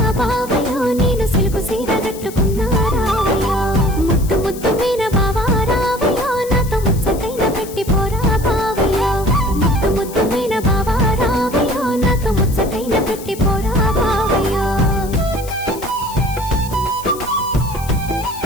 బావయ్యో నేను సిలుకు సీర కట్టుకున్నా రావయ్యో ముద్దు ముద్దు మీన బావా రావయ్యో నాతో ముచ్చటైన పెట్టి పోరా బావయ్యో ముద్దు ముద్దు మీన బావా రావయ్యో నాతో ముచ్చటైన పెట్టి పోరా బావయ్యో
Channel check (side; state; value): left; noise; hiss, 15 dB below the sound